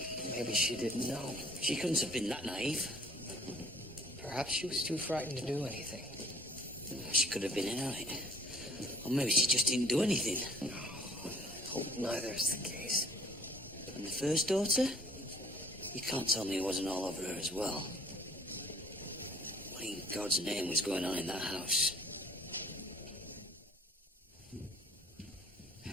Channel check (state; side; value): normal; both; correlation 0.55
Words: Maybe she didn't know. She couldn't have been that naive. Perhaps she was too frightened to do anything. She could have been in on it. Or maybe she just didn't do anything. I hope neither is the case. And the first daughter? You can't tell me it wasn't all over her as well. What in God's name was going on in that house?